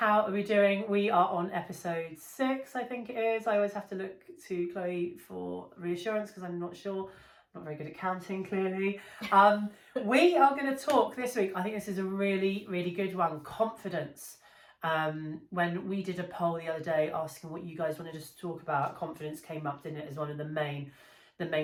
are we doing? We are on episode 6, I think it is. I always have to look to Chloe for reassurance because I'm not sure. Not very good at counting, clearly. We are going to talk this week. I think this is a really, really good one. Confidence. When we did a poll the other day asking what you guys wanted us to talk about, confidence came up, didn't it, as one of the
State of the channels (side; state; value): both; identical; correlation 1.00